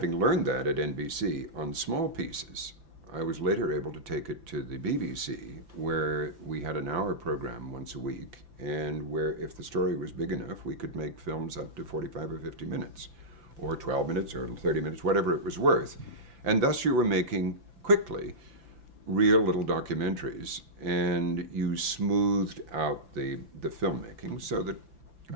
learned that at NBC on small pieces, I was later able to take it to the BBC, where we had an hour program once a week, and where if the story was big enough, we could make films up to 45 or 50 minutes, or 12 minutes, or 30 minutes, whatever it was worth. And thus you were making, quickly, real little documentaries, and you smoothed out the filmmaking so that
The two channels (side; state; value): left; late; 5.9 ms